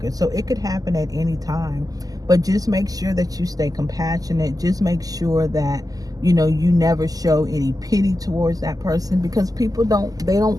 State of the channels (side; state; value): left; late; 0.17 ms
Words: So it could happen at any time. But just make sure that you stay compassionate. Just make sure that, you never show any pity towards that person, because people don't